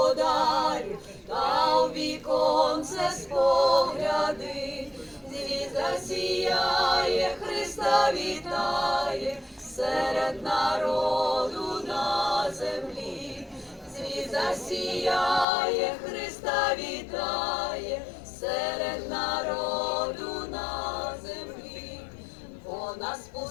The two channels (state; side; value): drops out; right; at 15.5 s